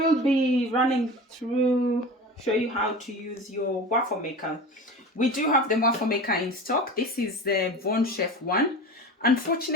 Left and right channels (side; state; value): both; normal; correlation 0.33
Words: be running through, show you how to use your waffle maker. We do have the waffle maker in stock. This is the Von Chef one.